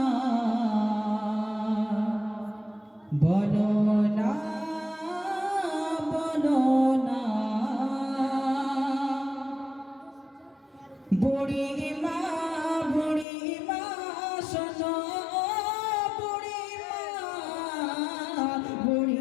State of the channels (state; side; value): drops out; right; at 13.2 s